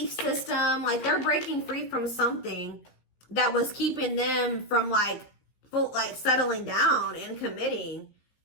system. Like, they're breaking free from something that was keeping them from like settling down and committing,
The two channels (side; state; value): right; late; 15 ms